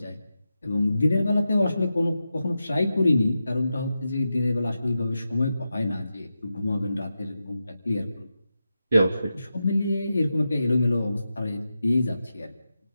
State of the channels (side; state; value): both; inverted; correlation -0.90